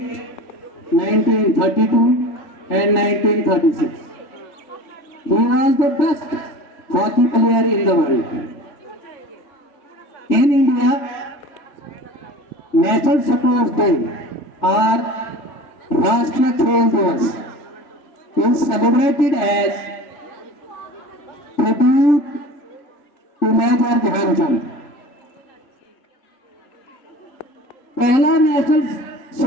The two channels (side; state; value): right; late; 3.4 ms